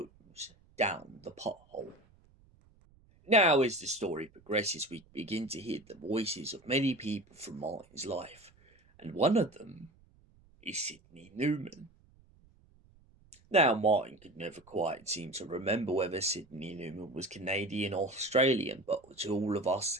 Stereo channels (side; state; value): right; noise; rumble, 29 dB below the sound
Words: down the pothole. Now, as the story progresses, we begin to hear the voices of many people from Martin's life, and one of them is Sidney Newman. Now, Martin could never quite seem to remember whether Sidney Newman was Canadian or Australian, but to all of us